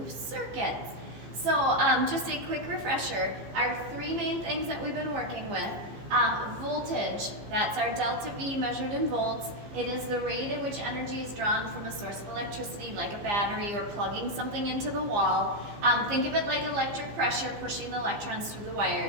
circuits. So just a quick refresher, our three main things that we've been working with. Voltage, that's our delta V measured in volts. It is the rate at which energy is drawn from a source of electricity like a battery or plugging something into the wall. Think of it like electric pressure pushing the electrons through the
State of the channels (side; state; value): left; late; 15 ms